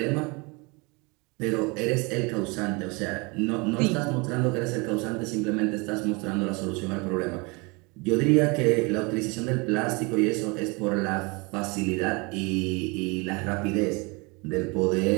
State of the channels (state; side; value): quieter; left; 28.2 dB